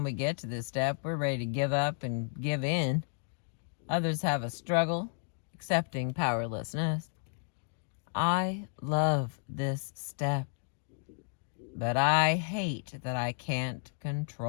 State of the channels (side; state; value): right; silent; digital silence